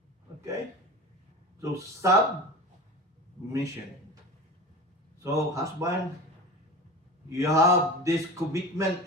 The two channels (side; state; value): both; normal; correlation 0.32